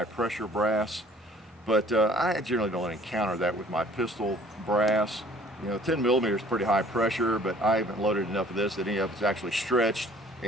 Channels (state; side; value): normal; both; correlation 0.54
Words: pressure brass. But I generally don't encounter that with my pistol brass. 10 millimeter is pretty high pressure, but I haven't loaded enough of this that any of it's actually stretched